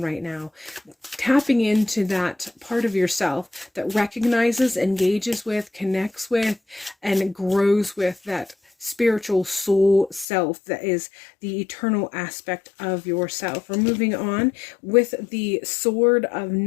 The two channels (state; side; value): drops out; right; at 10.2 s